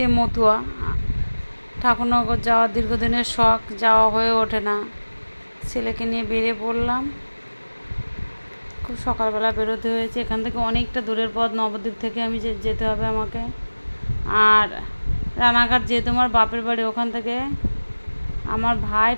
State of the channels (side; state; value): both; inverted; correlation -1.00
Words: মতুয়া, ঠাকুরনগর যাওয়ার দীর্ঘদিনের শখ, যাওয়া হয়ে ওঠে না। ছেলেকে নিয়ে বেরিয়ে পড়লাম। খুব সকালবেলা বেরোতে হয়েছে, এখান থেকে অনেকটা দূরের পথ, নবদ্বীপ থেকে আমি যেতে হবে আমাকে। আর রানাঘাট যেহেতু আমার বাপের বাড়ি, ওখান থেকে আমার ভাই,